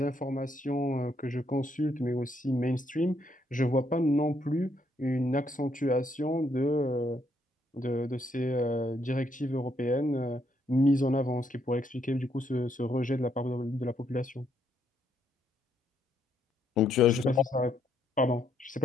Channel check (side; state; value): both; normal; correlation 0.74